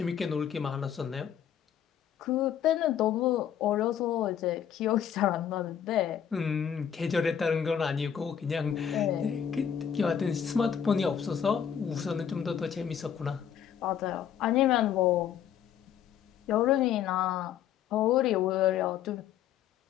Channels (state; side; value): quieter; right; 8.9 dB